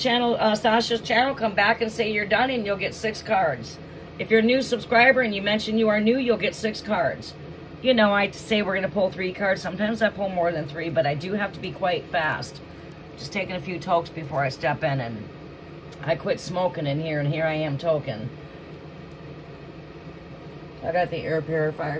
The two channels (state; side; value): identical; both; correlation 1.00